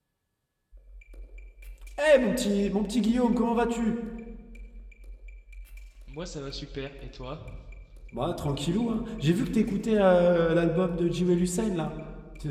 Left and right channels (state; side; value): identical; both; correlation 1.00